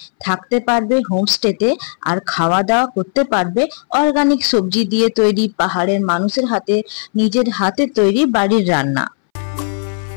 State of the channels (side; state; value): right; silent; 65 dB below the other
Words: থাকতে পারবে হোমস্টেতে, আর খাওয়া দাওয়া করতে পারবে অর্গানিক সবজি দিয়ে তৈরি, পাহাড়ের মানুষের হাতে নিজের হাতে তৈরি বাড়ির রান্না।